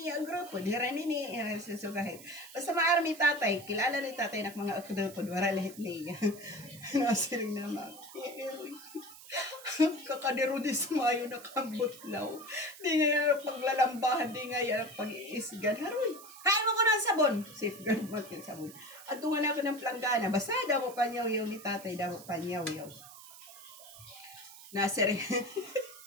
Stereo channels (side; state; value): right; noise; hiss, 17 dB below the sound